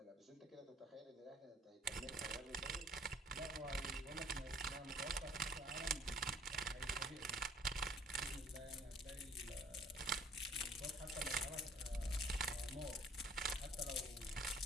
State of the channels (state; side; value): normal; both; correlation 0.55